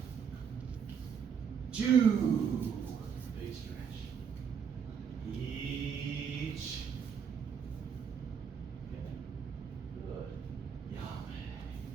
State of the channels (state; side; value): quieter; left; 7.0 dB